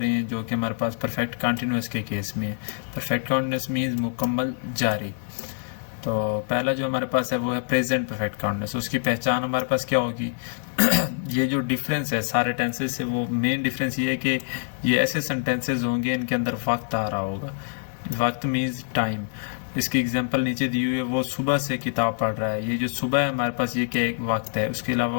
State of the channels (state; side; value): silent; right; digital silence